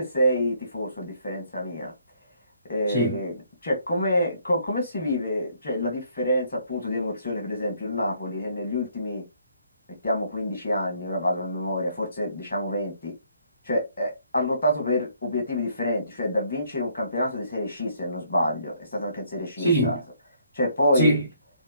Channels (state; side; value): inverted; both; correlation -0.67